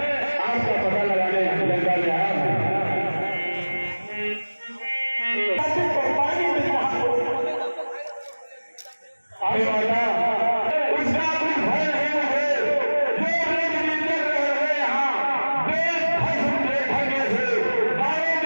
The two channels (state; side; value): inverted; both; correlation -1.00